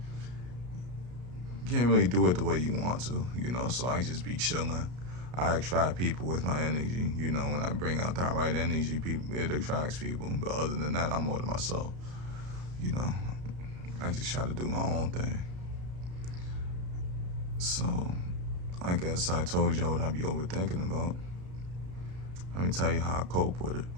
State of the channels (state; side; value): late; left; 33 ms